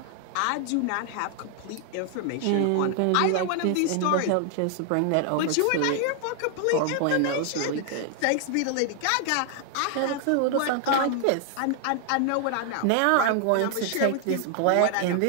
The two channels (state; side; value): different; both; correlation 0.00